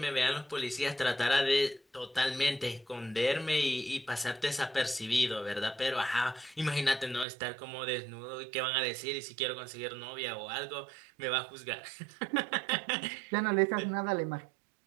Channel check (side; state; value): left; drops out; at 7.2 s